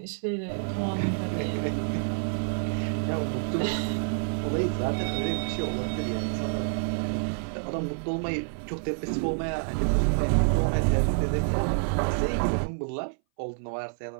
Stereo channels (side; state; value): left; silent; 59 dB below the other